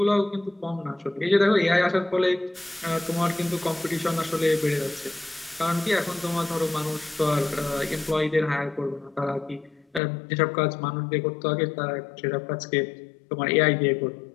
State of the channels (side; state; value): right; drops out; at 10.0 s